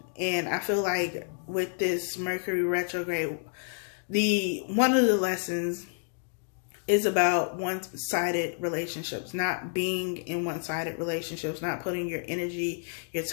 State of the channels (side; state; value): right; silent; 58 dB below the other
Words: And I feel like with this Mercury retrograde, one of the lessons is about one-sided relationships, not being in one-sided relationships, not putting your energy, your